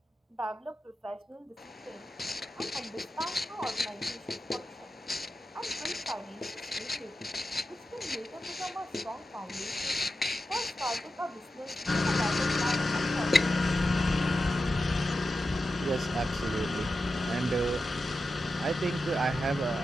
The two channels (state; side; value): normal; both; correlation 0.90